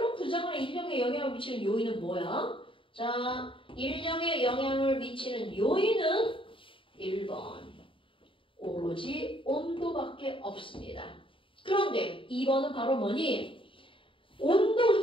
분자 간의 인력에 영향을 미치는 요인은 뭐야? 자, 인력에 영향을 미치는 요인은 1번. 오로지 온도밖에 없습니다. 그런데 2번은 바로 뭐니? 온도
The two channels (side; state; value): right; late; 0.25 ms